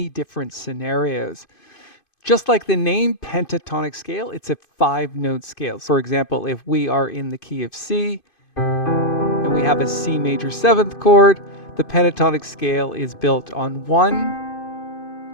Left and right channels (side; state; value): right; late; 2.5 ms